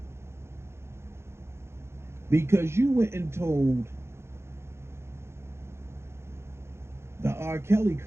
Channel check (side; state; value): left; late; 0.12 ms